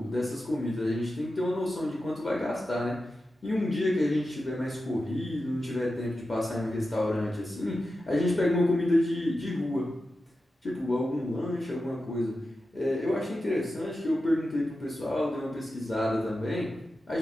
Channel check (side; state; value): both; normal; correlation 0.91